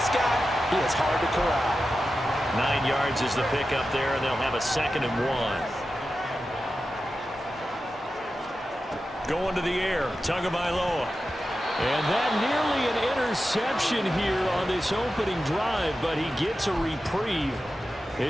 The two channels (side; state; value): both; normal; correlation 0.92